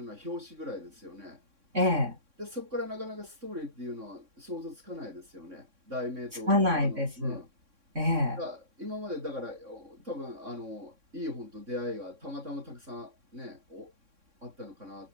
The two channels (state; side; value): late; left; 3.6 ms